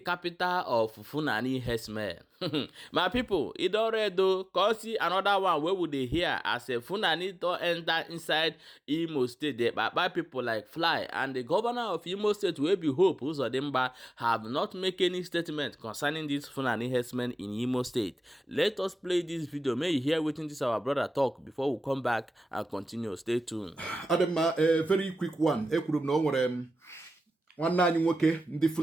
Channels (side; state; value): both; normal; correlation 0.95